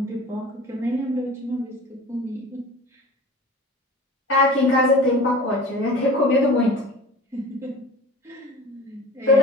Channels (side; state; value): both; normal; correlation 0.39